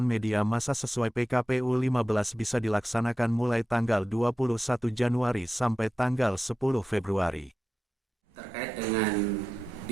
media massa sesuai PKPU 15 bisa dilaksanakan mulai tanggal 21 Januari sampai tanggal 10 Februari. Terkait dengan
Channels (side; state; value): both; normal; correlation 0.92